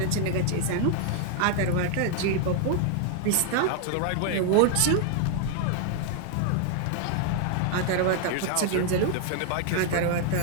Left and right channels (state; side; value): different; both; correlation 0.00